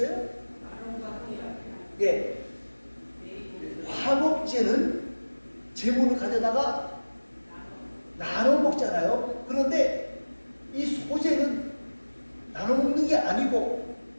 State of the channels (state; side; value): inverted; both; correlation -1.00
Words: 예. 화목제는 제물을 가져다가 나눠 먹잖아요. 그런데 이 소제는 나눠 먹는 게 아니고